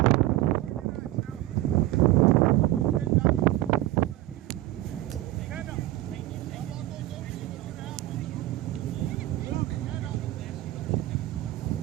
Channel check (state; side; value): quieter; left; 16.2 dB